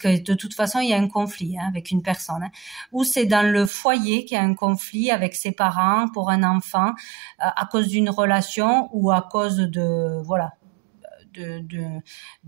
de toute façon, il y a un conflit avec une personne. Ou c'est dans le foyer qu'il y a un conflit avec ses parents pour un enfant à cause d'une relation ou à cause de, voilà,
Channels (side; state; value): left; drops out; at 3.7 s